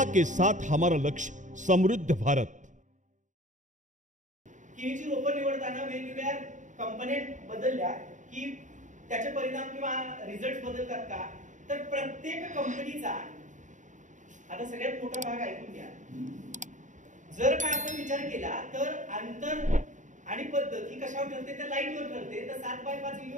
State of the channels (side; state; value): left; late; 0.36 ms